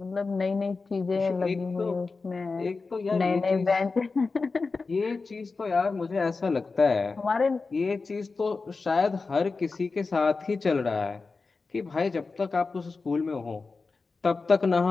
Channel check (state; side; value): quieter; right; 4.1 dB